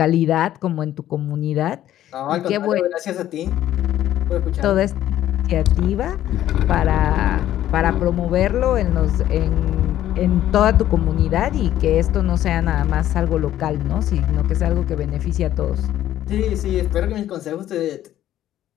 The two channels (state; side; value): quieter; right; 12.5 dB